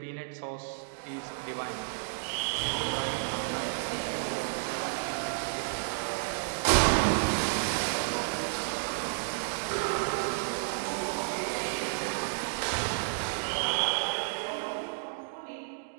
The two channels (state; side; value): silent; left; digital silence